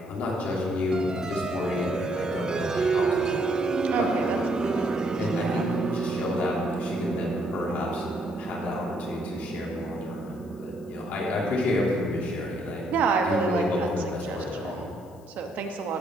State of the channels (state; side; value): noise; left; hiss, 30 dB below the sound